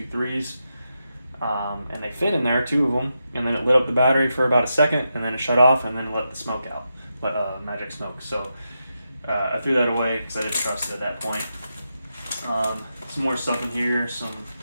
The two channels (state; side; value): inverted; both; correlation -0.87